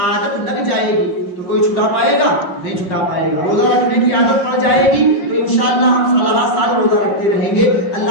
لگ جائے گی تو کوئی چھٹا پائے گا؟ نہیں چھٹا پائے گا۔ روزہ رکھنے کی عادت پڑ جائے گی تو انشاءاللہ ہم سال روزہ رکھتے رہیں گے۔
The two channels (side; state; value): right; late; 5.6 ms